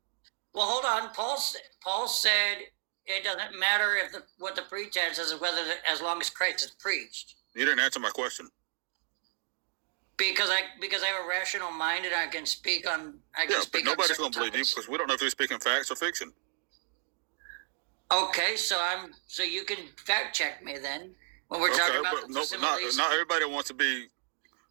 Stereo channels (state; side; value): silent; left; 57 dB below the other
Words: Well, hold on. Paul said it doesn't matter what the pretense is, as long as Christ is preached. You didn't answer my question. Because I have a rational mind and I can speak on. But nobody's going to believe you because we don't know if you're speaking facts or fiction. Okay, so you can fact check me then when we're talking about not everybody wants to be